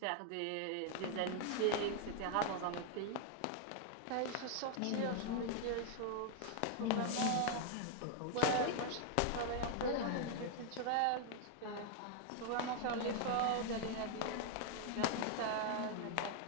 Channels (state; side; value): different; both; correlation 0.00